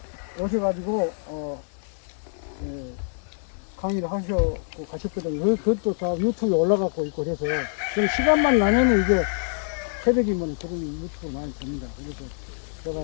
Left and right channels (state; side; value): silent; right; 56 dB below the other